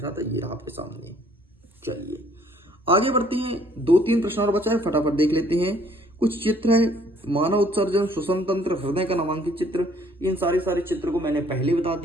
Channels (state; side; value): normal; both; correlation 0.61